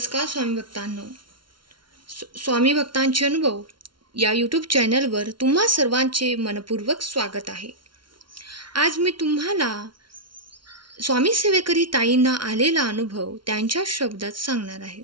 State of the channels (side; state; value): left; late; 0.73 ms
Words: स्वामी भक्तांनो. स्वामी भक्तांचे अनुभव या यूट्यूब चॅनलवर तुम्हा सर्वांचे मनपूर्वक स्वागत आहे. आज मी तुम्हाला स्वामी सेवेकरी ताईंना आलेला अनुभव त्यांच्या शब्दात सांगणार आहे.